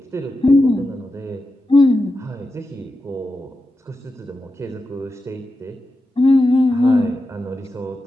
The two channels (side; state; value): both; normal; correlation 0.90